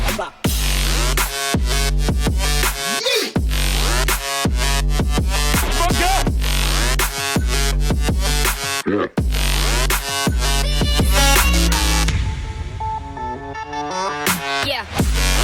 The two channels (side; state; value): both; identical; correlation 1.00